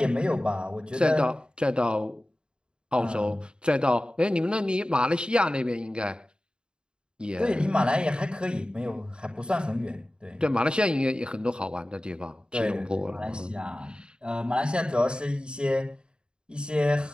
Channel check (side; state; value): left; late; 0.051 ms